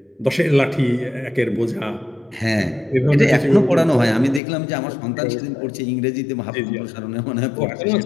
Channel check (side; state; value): right; drops out; at 4.4 s